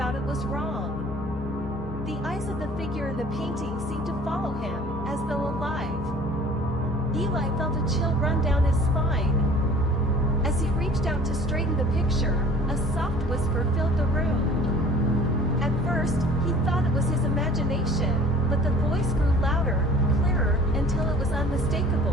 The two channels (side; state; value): both; normal; correlation 0.48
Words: it was wrong. The eyes of the figure in the painting seemed to follow him, as though alive. Eli felt a chill run down his spine. As he reached out to straighten the picture, a soft whisper filled the room. At first, he thought it was his imagination, but the voice grew louder, clearer, until it was